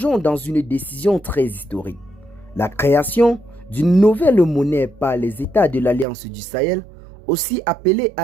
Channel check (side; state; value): left; drops out; at 6.1 s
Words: dans une décision très historique. La création d'une nouvelle monnaie par les États de l'Alliance du Sahel, aussi appelée